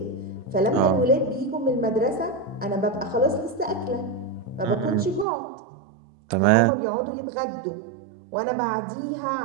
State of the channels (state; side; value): drops out; left; at 5.2 s